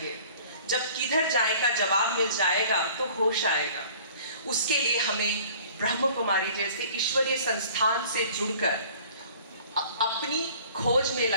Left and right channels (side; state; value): both; inverted; correlation -0.50